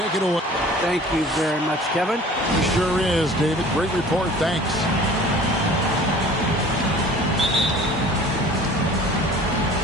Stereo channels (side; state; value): both; normal; correlation 0.46